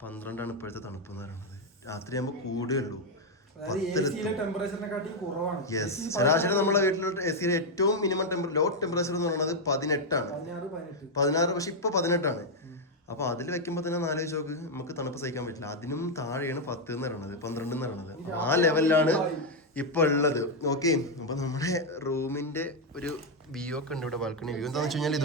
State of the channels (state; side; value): normal; both; correlation 0.01